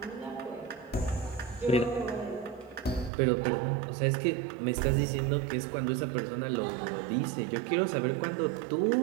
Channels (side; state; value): left; drops out; at 3.1 s